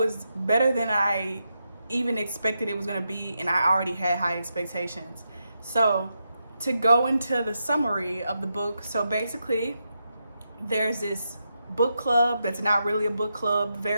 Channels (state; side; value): inverted; both; correlation -0.85